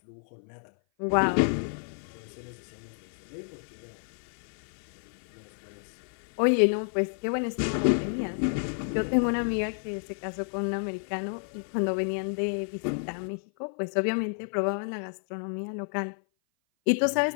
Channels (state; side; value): silent; right; 56 dB below the other